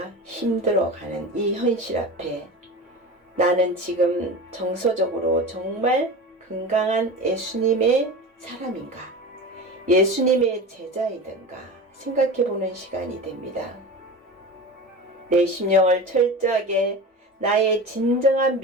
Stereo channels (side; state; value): both; normal; correlation 0.30